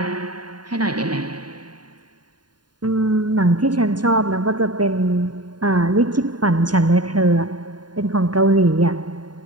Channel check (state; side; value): late; left; 0.70 ms